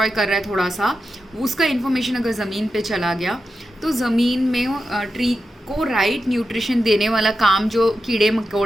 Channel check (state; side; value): normal; both; correlation 0.90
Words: कर रहा है थोड़ा सा, उसका इन्फॉर्मेशन अगर ज़मीन पे चला गया तो ज़मीन में ट्री को राइट न्यूट्रिशन देने वाला काम जो कीड़े